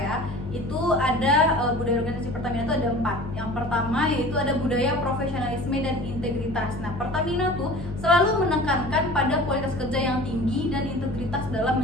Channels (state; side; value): normal; both; correlation 0.41